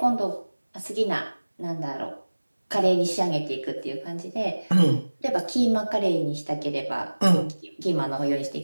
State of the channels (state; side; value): inverted; both; correlation -1.00